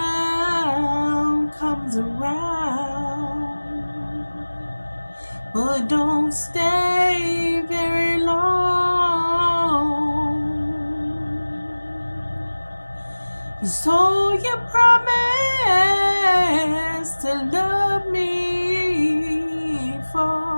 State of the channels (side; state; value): both; inverted; correlation -1.00